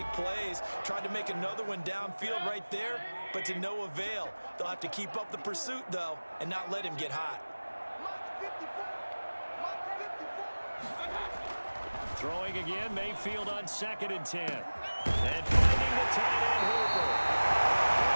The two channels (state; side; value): inverted; both; correlation -1.00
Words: plays. Tried to make another one downfield right there, but to no avail. They'll have to keep up the pursuit, though, and not let him get hot. Throwing again, Mayfield on 2nd and 10. And finding the tight end, Hooper.